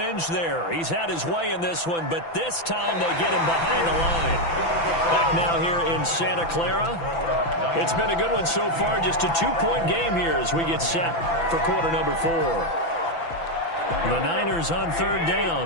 there. He's had his way in this one, but this time they get him behind the line. Back now here in Santa Clara. It's been a good one so far. Just a 2-point game here as we get set for quarter number 4. The Niners on third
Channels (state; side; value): late; right; 6.0 ms